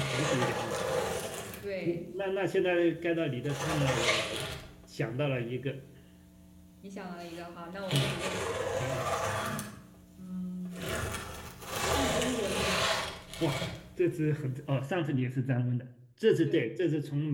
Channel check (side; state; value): both; identical; correlation 1.00